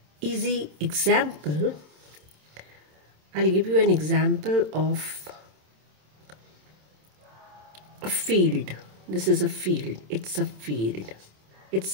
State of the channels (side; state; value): left; late; 27 ms